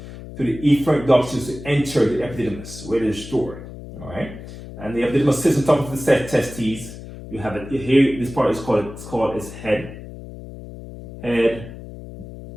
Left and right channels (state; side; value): noise; left; hum, 13 dB below the sound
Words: through the efferent ductules to enter the epididymis, where they're stored. All right, and the epididymis sits on top of the testes. You have it here. This part is called head,